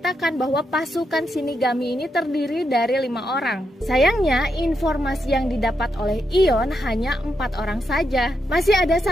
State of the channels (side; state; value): both; normal; correlation 0.82